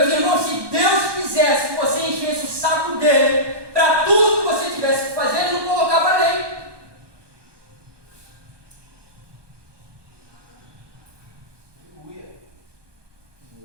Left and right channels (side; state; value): left; late; 1.2 ms